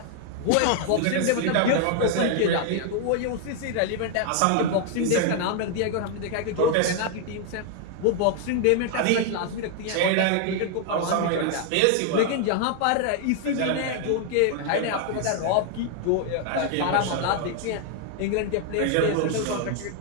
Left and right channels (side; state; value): both; different; correlation 0.00